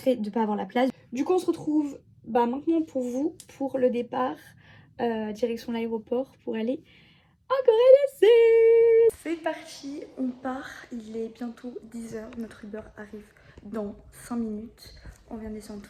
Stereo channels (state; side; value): identical; both; correlation 1.00